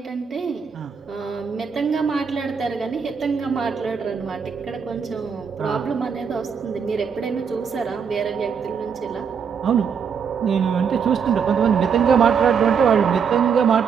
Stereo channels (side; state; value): left; quieter; 6.5 dB